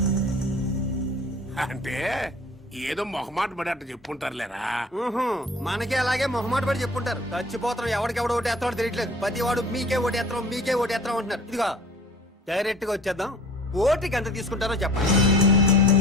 అంటే ఏదో మొహమాట పడి అట్ట చెప్పుంటారులేరా. మనకే అలాగే మొహమాట పడి చెప్పుంటారు. చచ్చిపోతాం, ఎవడికెవడు ఓటేస్తాడో తెలియట్లేదు. ప్రతి వాడు మీకే ఓటేస్తాం మీకే ఓటేస్తాం అంటున్నారు. ఇదిగో డైరెక్ట్ గా వచ్చేద్దాం. ఓటుకి ఎంత తీసుకుంటారో చెప్పండి.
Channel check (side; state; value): both; normal; correlation 0.46